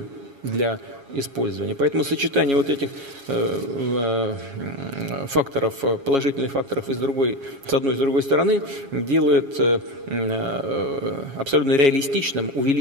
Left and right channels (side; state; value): left; late; 7.3 ms